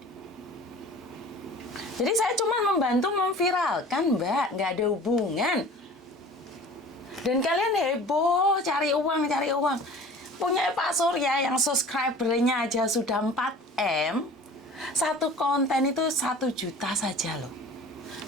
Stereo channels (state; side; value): normal; both; correlation 0.43